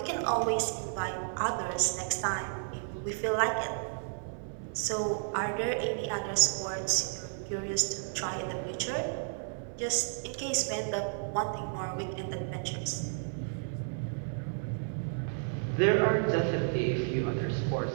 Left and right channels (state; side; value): silent; left; 56 dB below the other